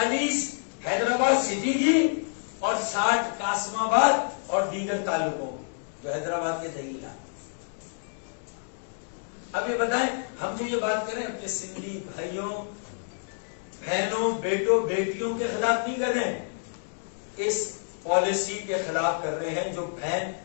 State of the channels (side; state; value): right; silent; digital silence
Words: حیدرآباد سٹی کی اور 60 قاسم آباد اور دیگر تعلقوں جو حیدرآباد کے دہی علاقے۔ اب یہ بتائیں، ہم جو یہ بات کریں اپنے سندھی بھائیوں بہنوں بیٹوں بیٹیوں کے خلاف نہیں کر رہے ہیں، اس پالیسی کے خلاف کر رہے ہیں جو بہن